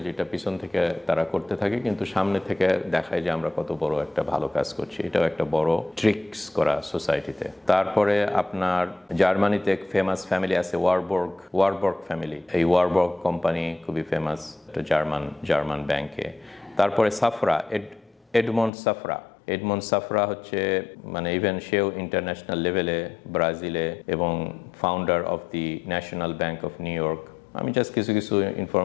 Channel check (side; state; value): right; drops out; at 18.7 s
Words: যেটা পিছন থেকে তারা করতে থাকে, কিন্তু সামনে থেকে দেখায় যে আমরা কত বড় একটা ভালো কাজ করছি। এটাও একটা বড় ট্রিক্স করা সোসাইটিতে। তারপরে আপনার জার্মানিতে এক ফেমাস ফ্যামিলি আছে ওয়ারবর্গ ফ্যামিলি। এই ওয়ারবর্গ কোম্পানি খুবই ফেমাস, একটা জার্মান ব্যাংকে। তারপরে সাফরা, এডমন্ড সাফরা হচ্ছে মানে ইভেন সেও ইন্টারন্যাশনাল লেভেলে ব্রাজিলে, এবং founder of the national bank of new York. আমি জাস্ট কিছু কিছু